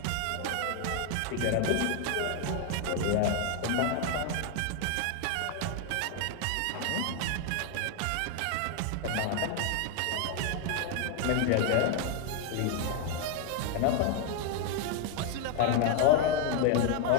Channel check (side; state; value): both; different; correlation 0.00